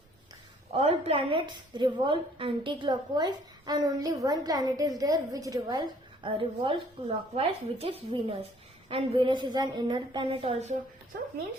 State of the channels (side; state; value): both; normal; correlation 0.59